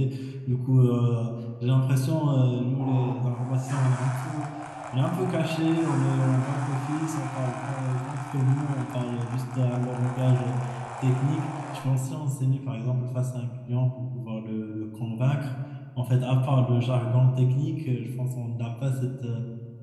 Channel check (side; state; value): both; identical; correlation 1.00